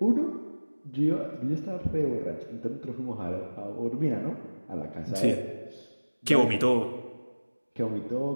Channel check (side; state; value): both; inverted; correlation -1.00